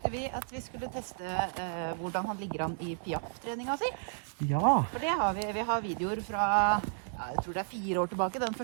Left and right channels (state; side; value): silent; left; digital silence